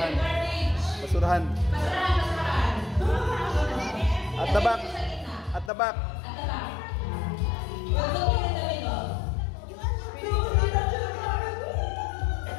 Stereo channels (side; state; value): right; drops out; at 5.7 s